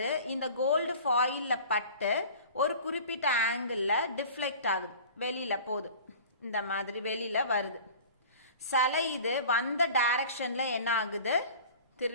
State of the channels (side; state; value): both; inverted; correlation -0.42